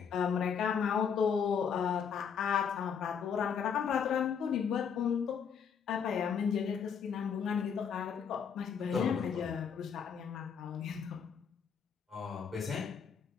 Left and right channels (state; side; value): quieter; right; 7.0 dB